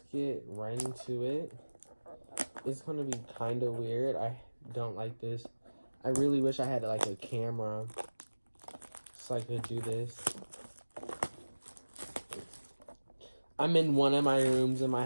get right into it. It's gonna be kind of weird. I don't like this. I really wish I had like a camera so I could do this. I'm in one of my rooms in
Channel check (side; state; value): both; inverted; correlation -1.00